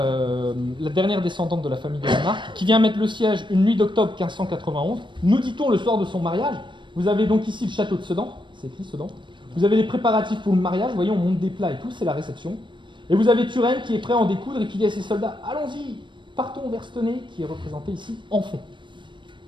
dernière descendante de la famille de la Marque, qui vient mettre le siège une nuit d'octobre 1591. Nous dit-on le soir de son mariage. Vous avez donc ici le château de Sedan, c'est écrit Sedan. Vous avez les préparatifs pour le mariage, vous voyez, on monte des plats et tout, c'est la réception. Et vous avez Turenne qui est prêt à en découdre et qui dit à ses soldats « Allons-y, partons vers Stenay, qui est représenté ici en fond.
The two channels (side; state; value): left; late; 0.23 ms